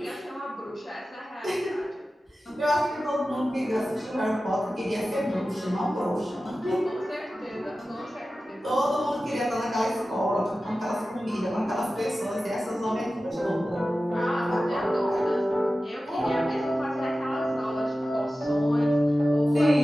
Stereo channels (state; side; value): normal; both; correlation 0.95